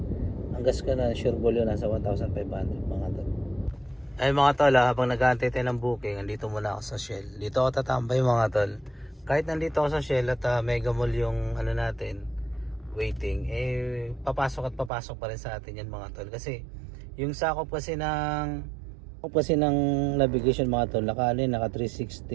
ang gas ko na sure ball yun nasa 1,500 mga tol. Ay mga tol, habang nag-aantay tayo ng booking, andito muna ako sa Shell. Dito ako tatambay mga tol. Kahit nandito ako sa Shell at Mega Mall yung natin, waiting, papasok pa rin sa atin yan mga tol. Kasi yung sakop kasi ng navigation mga tol, naka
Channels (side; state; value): left; drops out; at 14.9 s